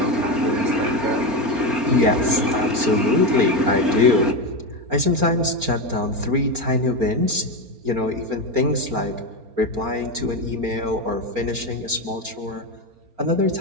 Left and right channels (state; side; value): late; left; 4.3 ms